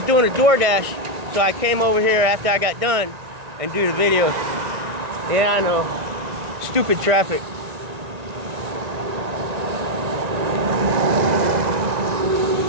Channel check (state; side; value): late; left; 1.6 ms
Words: So I came over here after I got done and do the video. Yeah, I know. Stupid traffic.